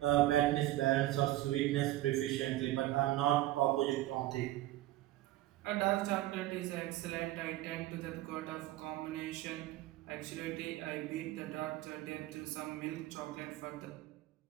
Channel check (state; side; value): quieter; left; 15.9 dB